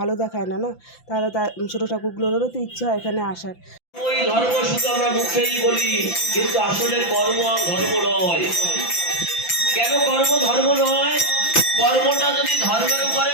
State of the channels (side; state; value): right; late; 5.9 ms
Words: দেখায় না, না? তাহলে তার ছোটো ঠাকুরগুলোরও তো ইচ্ছে হয় এখানে আসার। ওই ধর্ম শুধু আমরা মুখেই বলি, কিন্তু আসলে কর্ম ধর্ম নয়। কেন কর্ম ধর্ম নয়? কর্মটা যদি ধর্মের উপরে